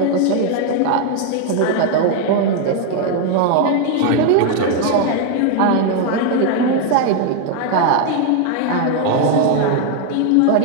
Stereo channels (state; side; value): different; both; correlation 0.01